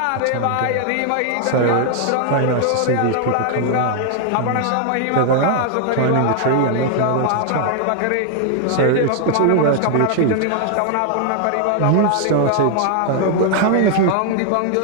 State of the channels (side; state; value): both; different; correlation 0.00